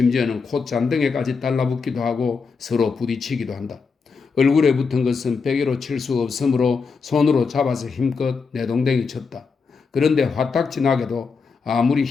콧잔등에까지 달라붙기도 하고 서로 부딪히기도 한다. 얼굴에 붙은 것은 베개로 칠 수 없으므로 손으로 잡아서 힘껏 내동댕이 쳤다. 그런데 화딱지나게도 아무리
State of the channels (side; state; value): right; quieter; 5.1 dB